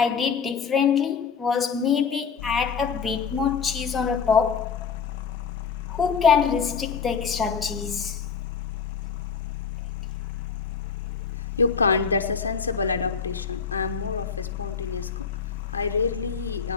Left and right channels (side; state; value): right; quieter; 6.1 dB